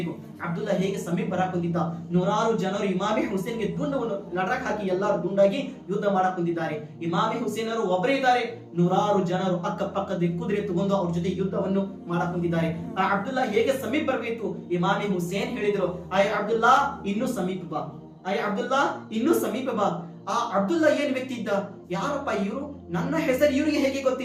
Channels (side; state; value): both; identical; correlation 1.00